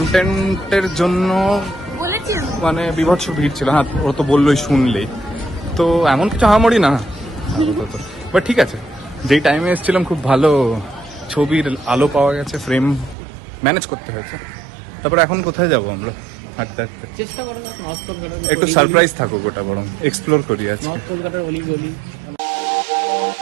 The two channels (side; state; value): left; drops out; at 13.2 s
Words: জন্য মানে বিভৎস ভিড় ছিল। হ্যাঁ, ও তো বললোই শুনলেই, তো এমন কিছু হামামড়ি না, বাট ঠিক আছে। যেই টাইমে এসেছিলাম খুব ভালো ছবির আলো পাওয়া গেছে, ফ্রেম ম্যানেজ করতে হয়েছে। তারপরে এখন কোথায় যাবো আমরা? হাঁটতে হাঁটতে চেষ্টা করো না নর্থ কলকাতার একটু সারপ্রাইজ থাকুক, ওটা বরং এক্সপ্লোর করি আজকে। নর্থ কলকাতার অলি গলি।